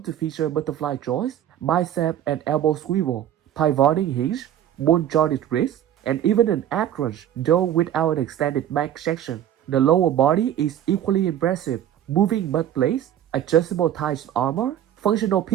to feature butterfly joints, bicep and elbow swivel, pivoting hinge, bone-jointed wrist, and even an ab crunch, though without an extended back section. The lower body is equally impressive, moving butt plates, adjustable thighs armor, functional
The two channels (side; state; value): left; quieter; 11.0 dB